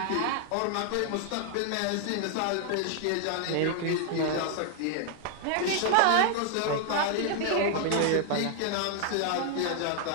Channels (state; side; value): different; both; correlation 0.00